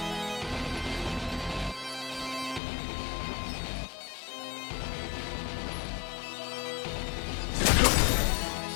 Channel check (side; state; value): right; drops out; at 2.6 s